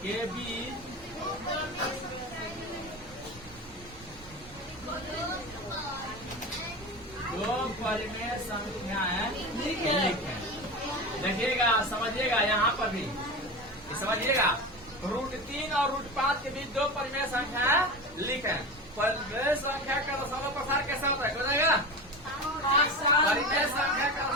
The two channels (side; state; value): right; noise; rumble, 20 dB below the sound